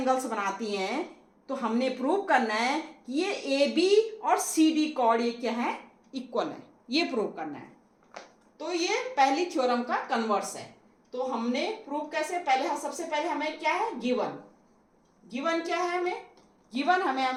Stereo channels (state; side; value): identical; both; correlation 1.00